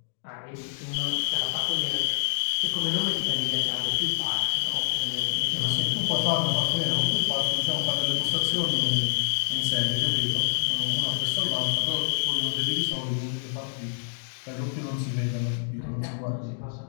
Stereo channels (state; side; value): silent; right; digital silence